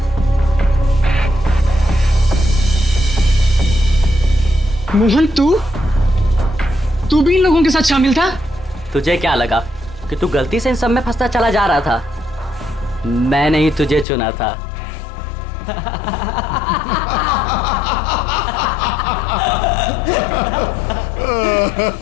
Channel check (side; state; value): right; drops out; at 14.1 s